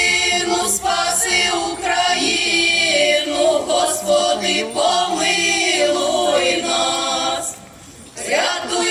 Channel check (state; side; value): identical; both; correlation 1.00